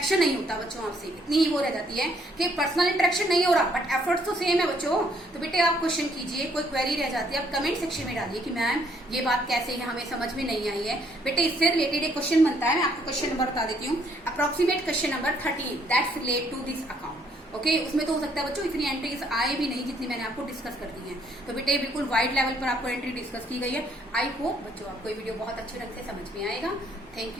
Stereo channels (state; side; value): normal; both; correlation 0.67